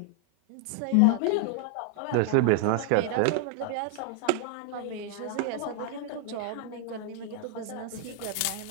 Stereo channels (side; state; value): both; different; correlation 0.00